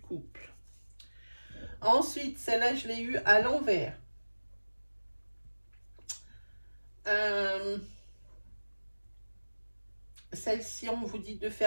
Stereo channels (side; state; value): both; inverted; correlation -1.00